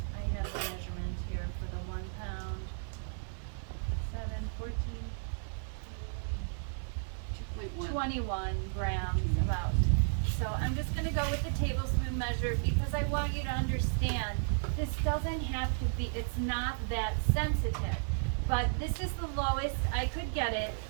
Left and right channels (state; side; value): silent; left; 55 dB below the other